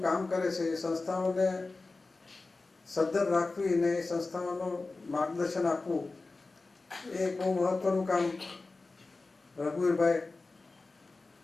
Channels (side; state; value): right; quieter; 3.6 dB